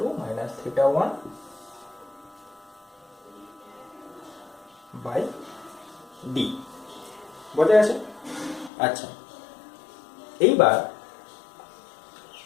minus theta 1 by D. বোঝা গেছে? আচ্ছা, এইবার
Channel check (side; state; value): right; drops out; at 8.7 s